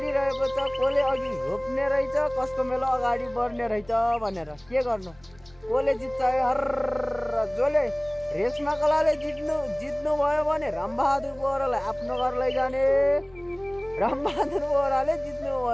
छ। कसले अघि रोप्ने रहेछ, कसको मेलो अगाडि बढ्ने रहेछ भनेर। के गर्नु, कसले जित्छ हर। जसले रेशमा कलाले जित्नु भयो भने रामबहादुर बोहरालाई आफ्नो घर लैजाने, रामबहादुर बोहराले जित्नु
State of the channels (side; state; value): left; noise; rumble, 27 dB below the sound